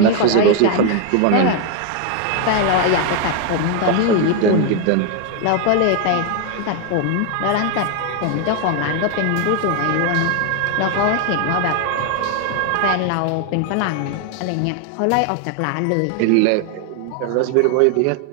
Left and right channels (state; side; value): different; both; correlation 0.01